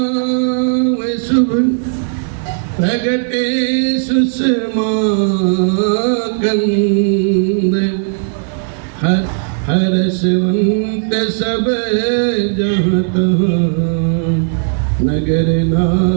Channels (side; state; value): left; silent; digital silence